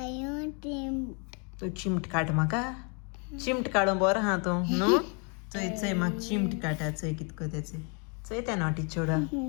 तू चिमट काड म्हाका चिमट काडून बरो हा तूं न्हू चोय चोय म्हाका चिमट काडा चोय कितको तेचे चोय त्या नॉटी चोडा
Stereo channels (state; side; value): quieter; right; 35.7 dB